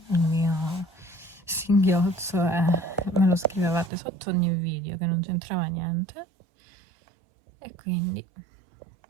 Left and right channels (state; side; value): drops out; left; at 3.9 s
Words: il mio singhiozzo e me lo scrivevate sotto ogni video che non c'entrava niente, e quindi